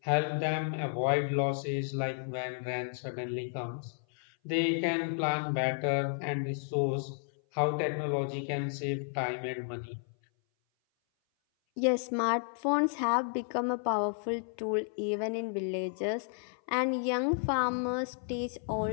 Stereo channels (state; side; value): silent; right; 56 dB below the other